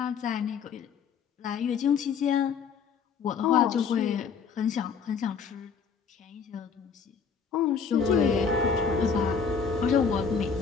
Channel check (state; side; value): quieter; right; 6.1 dB